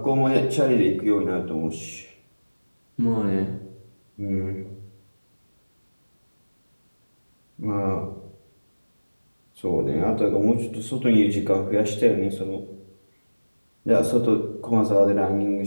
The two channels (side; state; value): both; inverted; correlation -1.00